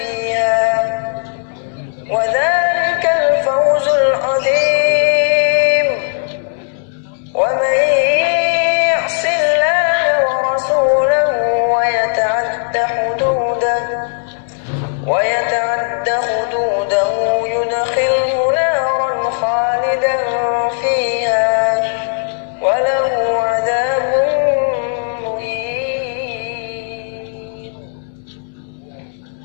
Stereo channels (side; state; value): right; silent; 68 dB below the other